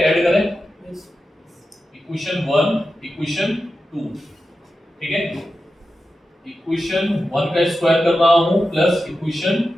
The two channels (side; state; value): both; normal; correlation 0.91